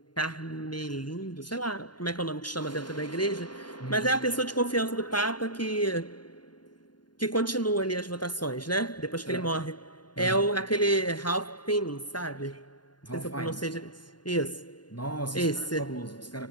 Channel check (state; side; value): late; right; 0.71 ms